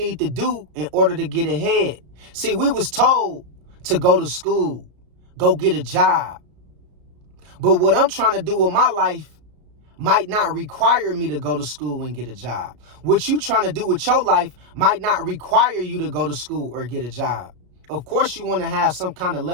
to do in order to get ahead. See, we was told to go to school, go get a job. But what I'm trying to do with my life might not require me to go to school and get a job. What you trying to do with your life might not require you to go to school or get a job. Of course, you want to have some kind of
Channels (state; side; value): late; left; 33 ms